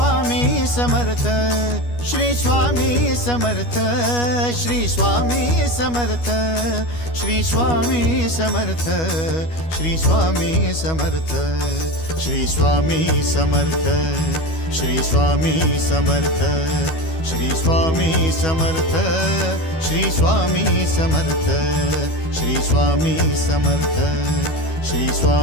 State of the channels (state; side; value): late; right; 12 ms